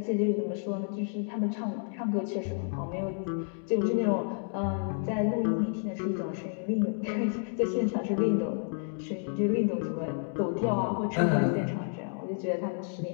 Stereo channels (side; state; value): right; silent; 58 dB below the other